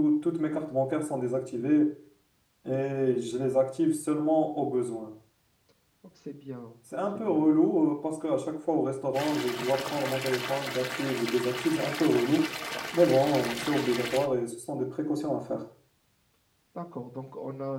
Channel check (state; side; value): identical; both; correlation 1.00